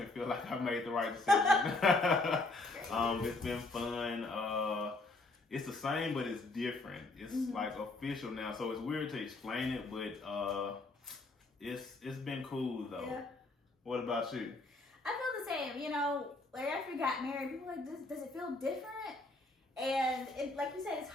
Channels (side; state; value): right; quieter; 3.1 dB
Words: feel like I made the right decision. It's been fun. It's the same, but it's different. It's like official now, so it's weird to explain it, but it's been cool though. Yeah. What about you? I feel the same. Like after we got married, people were like, does it feel different? And like you said, it's